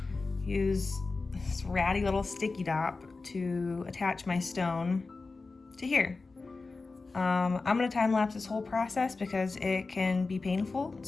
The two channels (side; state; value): right; quieter; 3.8 dB